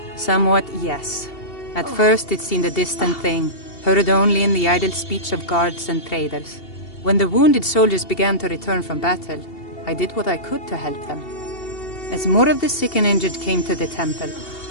Somewhat, yes. At first it seemed a distant thing, heard only in the idle speech of guards and traders. When the wounded soldiers began to return from battle, I did what I could to help them. As more of the sick and injured came to the temple,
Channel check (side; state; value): right; late; 2.7 ms